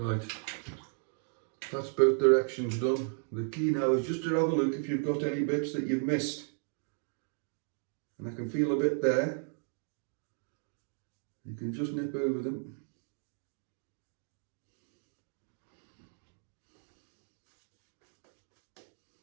that's both directions done. The key now is just to have a look if you've got any bits that you've missed. And I can feel a bit there. You can just nip over them.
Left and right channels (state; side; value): silent; left; 55 dB below the other